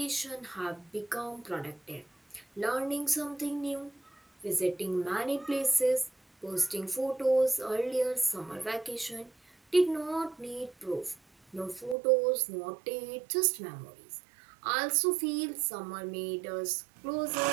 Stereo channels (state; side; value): drops out; left; at 12.0 s